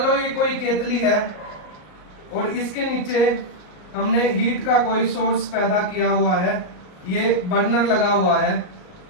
लो ये कोई केतली है और इसके नीचे हमने हीट का कोई सोर्स पैदा किया हुआ है, ये बर्नर लगा हुआ है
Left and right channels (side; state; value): right; late; 38 ms